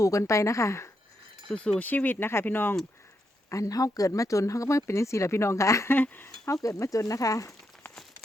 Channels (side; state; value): both; normal; correlation 0.81